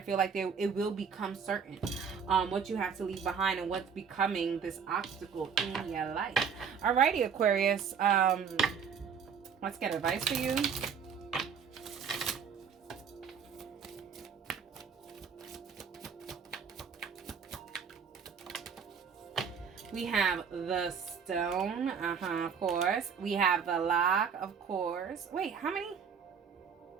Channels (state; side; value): quieter; left; 6.7 dB